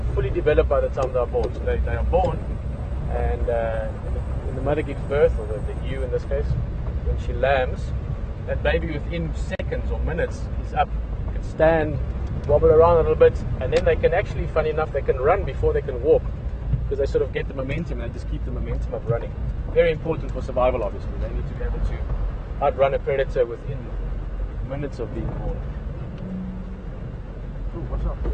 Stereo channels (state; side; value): identical; both; correlation 1.00